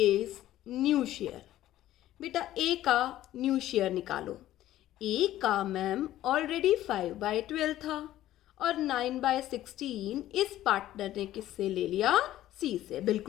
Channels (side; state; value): right; quieter; 13.8 dB